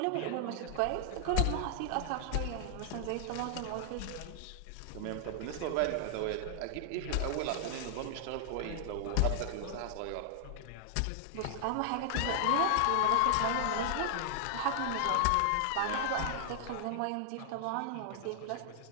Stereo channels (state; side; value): different; both; correlation -0.01